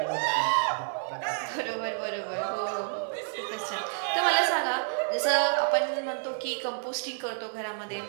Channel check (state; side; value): silent; left; 58 dB below the other